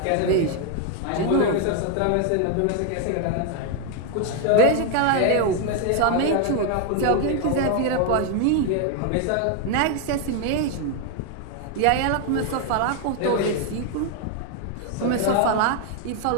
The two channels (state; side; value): different; both; correlation 0.01